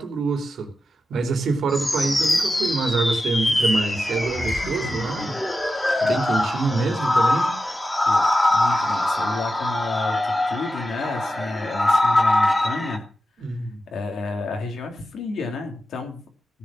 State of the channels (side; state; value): both; normal; correlation 0.90